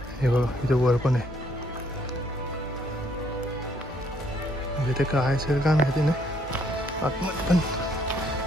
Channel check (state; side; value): normal; both; correlation 0.68